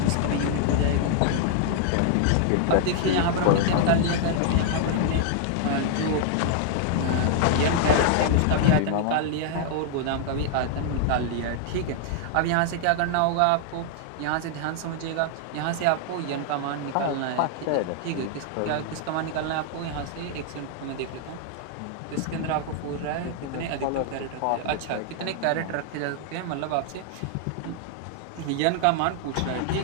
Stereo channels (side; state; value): both; different; correlation 0.00